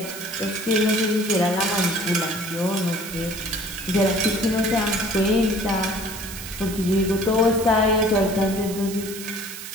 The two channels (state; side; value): noise; right; hiss, 11 dB below the sound